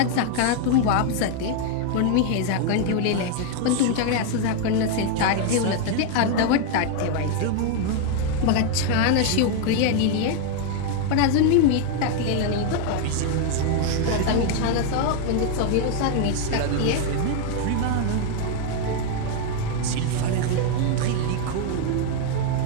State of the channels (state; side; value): different; both; correlation 0.00